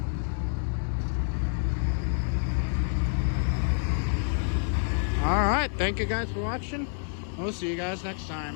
Alright, thank you guys for watching. We'll see you guys next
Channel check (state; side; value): silent; right; digital silence